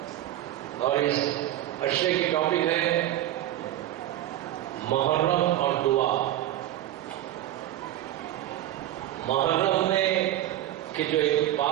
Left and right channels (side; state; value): left; quieter; 13.4 dB